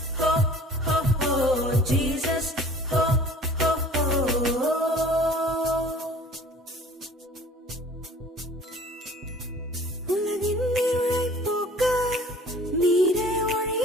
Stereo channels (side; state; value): both; normal; correlation 0.48